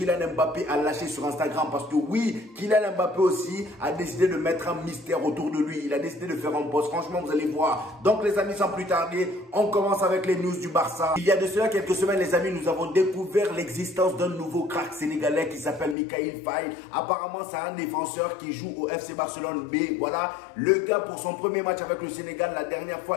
Mbappé a lâché sur Instagram. Parce que oui, Kylian Mbappé aussi a décidé de mettre un mystère autour de lui. Il a décidé de faire un post. Franchement, vous allez voir. Donc les amis, sans plus tarder, on commence avec les news du Barça. Il y a de cela quelques semaines, les amis, nous avons découvert l'existence d'un nouveau crack sénégalais qui s'appelle Mikayil Faye. Apparemment, c'est un défenseur qui joue au FC Barcelone B. Voilà, le gars pour son premier match avec le Sénégal, la dernière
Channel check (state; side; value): drops out; right; at 16.0 s